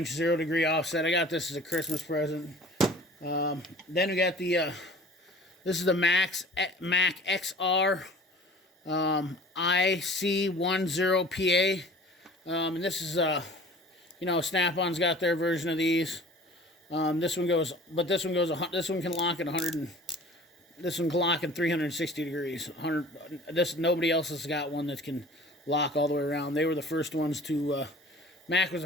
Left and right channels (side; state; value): both; normal; correlation 0.45